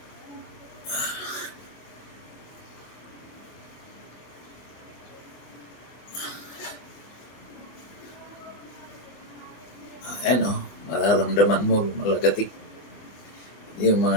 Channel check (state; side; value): late; right; 24 ms